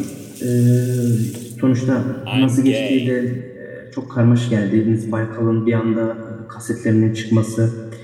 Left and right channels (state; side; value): identical; both; correlation 1.00